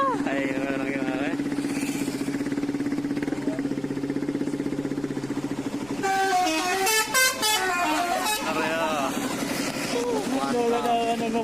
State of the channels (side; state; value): left; noise; rumble, 21 dB below the sound